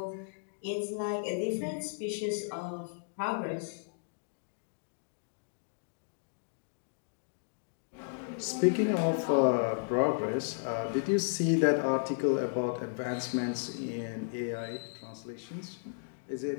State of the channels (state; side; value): silent; right; digital silence